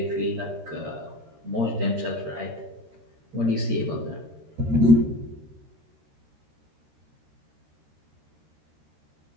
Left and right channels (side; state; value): left; late; 13 ms